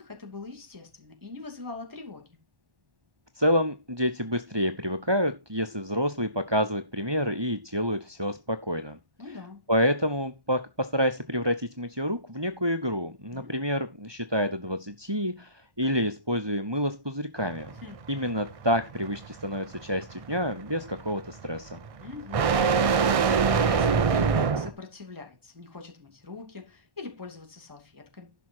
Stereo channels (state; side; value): late; left; 1.6 ms